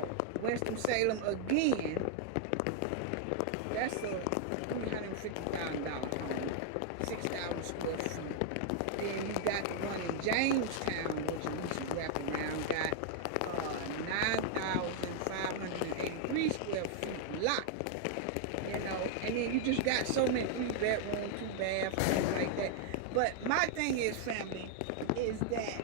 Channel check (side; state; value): both; different; correlation 0.00